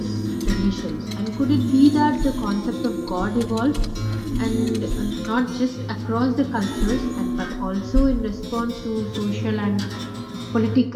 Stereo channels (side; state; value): both; identical; correlation 1.00